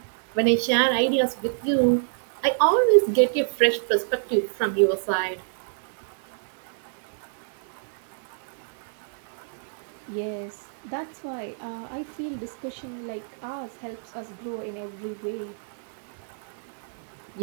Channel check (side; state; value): left; silent; 60 dB below the other